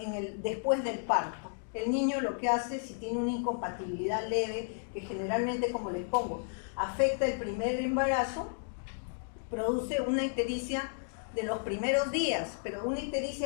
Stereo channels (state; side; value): silent; right; digital silence